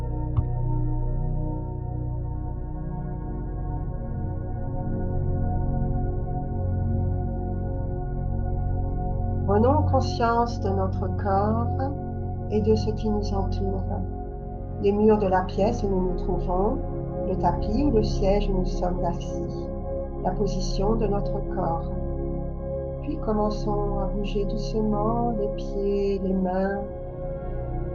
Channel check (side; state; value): both; identical; correlation 1.00